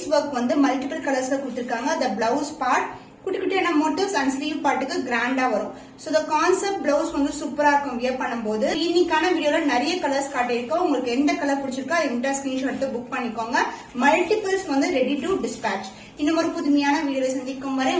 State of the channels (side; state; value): both; identical; correlation 1.00